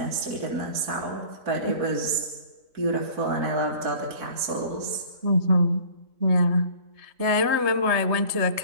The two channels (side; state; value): left; late; 3.3 ms